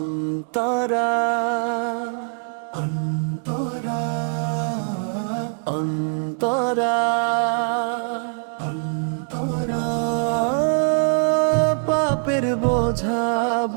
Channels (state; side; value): silent; left; digital silence